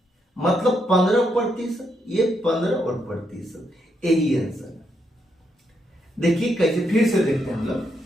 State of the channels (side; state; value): both; normal; correlation 0.79